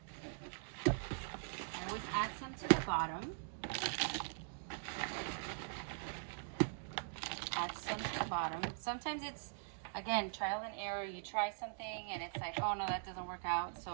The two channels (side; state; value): left; silent; digital silence